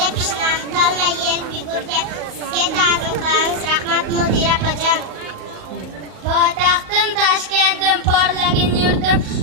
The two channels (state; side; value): late; left; 38 ms